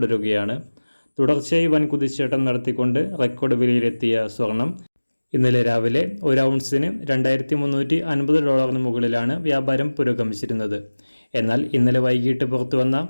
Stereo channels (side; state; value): both; inverted; correlation -1.00